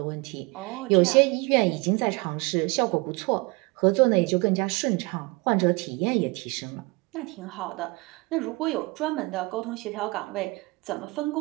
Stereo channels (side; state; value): left; quieter; 26.1 dB